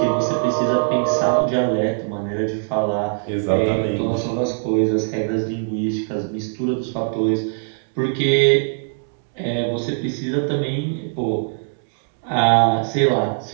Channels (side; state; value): left; silent; digital silence